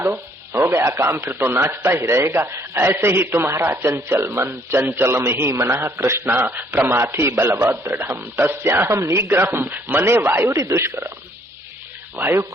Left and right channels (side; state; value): both; normal; correlation 0.64